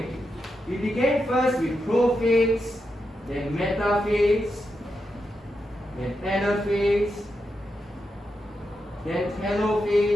We began first with prophase, then metaphase, then anaphase, then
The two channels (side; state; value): both; normal; correlation 0.86